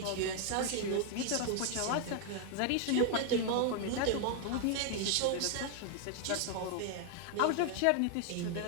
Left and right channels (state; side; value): different; both; correlation 0.00